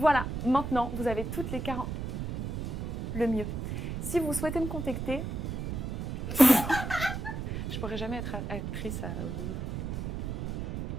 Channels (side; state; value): right; noise; rumble, 4 dB below the sound